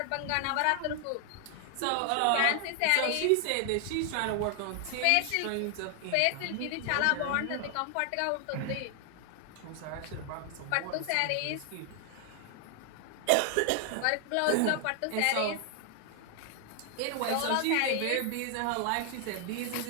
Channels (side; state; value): both; different; correlation 0.00